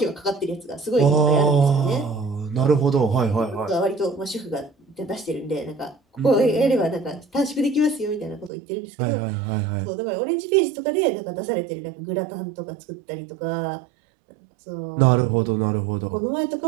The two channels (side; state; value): left; drops out; at 8.5 s